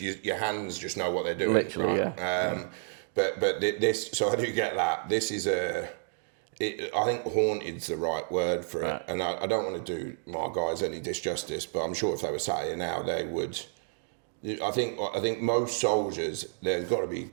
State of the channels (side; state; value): left; silent; digital silence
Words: hands just know what they're doing. Literally, right? Yeah. But this, so I do get that. This is I think haunted's the right word for it, right. And I don't want to do my guys any disjustice, but I'm sure if they were sat here now, they would. I think most soldiers, they've got to be